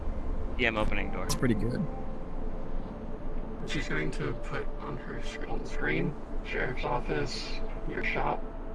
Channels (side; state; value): both; identical; correlation 1.00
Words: Yeah, I'm opening door. it's pretty good. She's going to put on on the screen, sheriff's office, your shop,